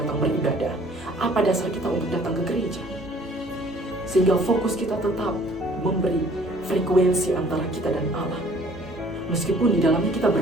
beribadah? Apa dasar kita untuk datang ke gereja? Sehingga fokus kita tetap memberi frekuensi antara kita dan Allah. Meskipun di dalamnya kita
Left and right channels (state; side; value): normal; both; correlation 0.55